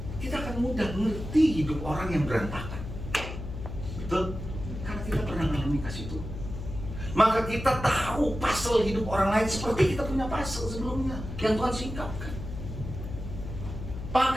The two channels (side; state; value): left; noise; hum, 8 dB below the sound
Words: kita akan mudah mengerti hidup orang yang berantakan. Betul? Karena kita pernah mengalami kasih Tuhan. Maka kita tahu puzzle hidup orang lain seperti kita punya puzzle sebelumnya yang Tuhan singkapkan.